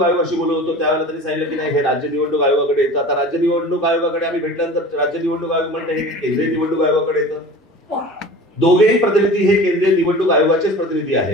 आयोगाशी बोलत होतो त्यावेळेला त्यांनी सांगितलं की नाही हे राज्य निवडणूक आयोगाकडे येतं. आता राज्य निवडणूक आयोगाकडे आम्ही भेटल्यानंतर राज्य निवडणूक आयोग म्हणते हे केंद्रीय निवडणूक आयोगाकडे येतं. दोघेही प्रतिनिधी हे केंद्रीय निवडणूक आयोगाचेच प्रतिनिधी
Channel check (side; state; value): both; normal; correlation 0.38